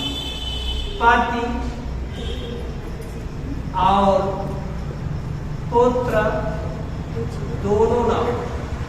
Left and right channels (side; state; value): both; identical; correlation 1.00